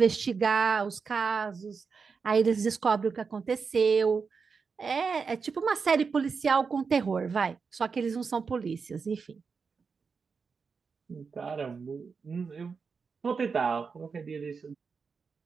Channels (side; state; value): left; quieter; 5.3 dB